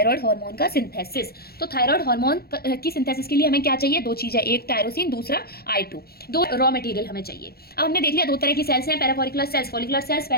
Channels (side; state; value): right; late; 0.45 ms